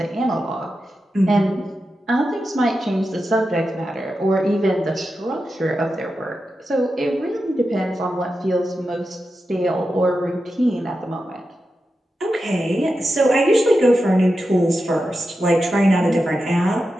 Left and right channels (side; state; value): both; normal; correlation 0.90